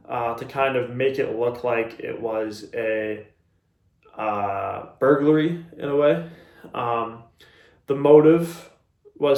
to kind of make it look like it was a burglary in a way. The motive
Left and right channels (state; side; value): identical; both; correlation 1.00